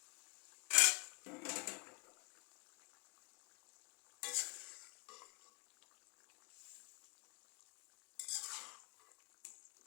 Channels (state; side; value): quieter; right; 31.6 dB